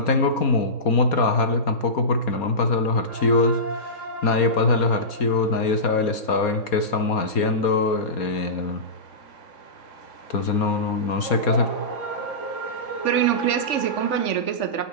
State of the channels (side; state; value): right; late; 4.2 ms